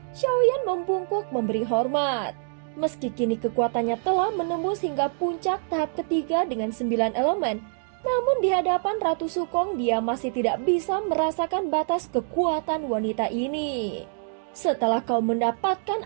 Xiaoyan membungkuk memberi hormat. Meski kini kekuatannya telah menembus hingga puncak tahap ketiga dengan 9 elemen, namun di hadapan Ratu Sukong dia masih tidak bisa merasakan batas kekuatan wanita ini. Setelah kau mendapatkan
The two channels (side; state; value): left; silent; digital silence